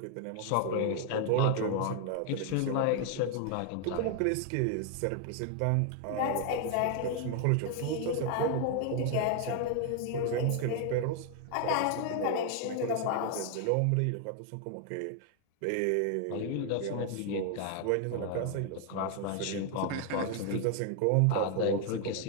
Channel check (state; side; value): different; both; correlation 0.00